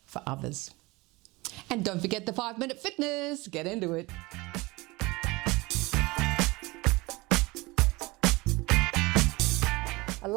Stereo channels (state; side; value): quieter; left; 22.8 dB